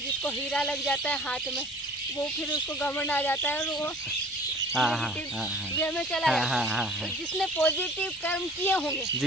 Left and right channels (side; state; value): both; normal; correlation 0.47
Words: हीरा लग जाता है हाथ में, वो फिर उसको घमंड आ जाता है और वो नेगेटिव वे में चला जाता है। तो जिसने पॉजिटिव कर्म किए होंगे